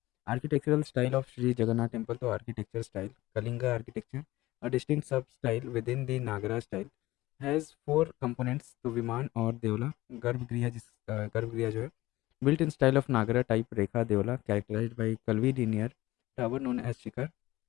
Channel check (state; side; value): quieter; right; 17.8 dB